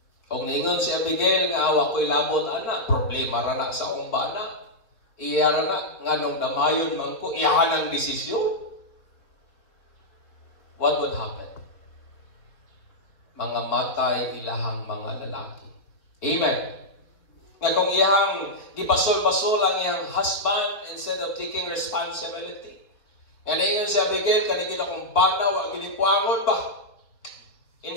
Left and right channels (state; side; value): late; right; 4.4 ms